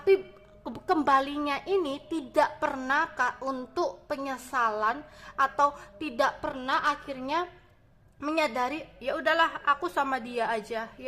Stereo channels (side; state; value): both; identical; correlation 1.00